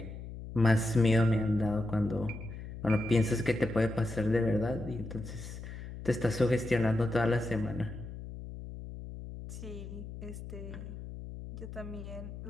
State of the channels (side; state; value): left; noise; hum, 10 dB below the sound